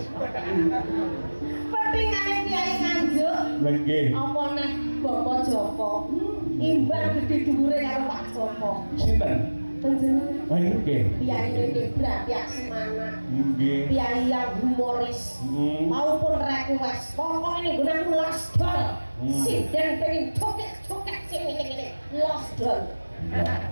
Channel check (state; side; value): inverted; both; correlation -1.00